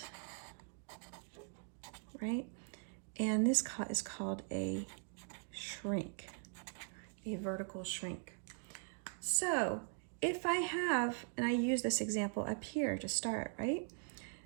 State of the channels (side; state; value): left; silent; 50 dB below the other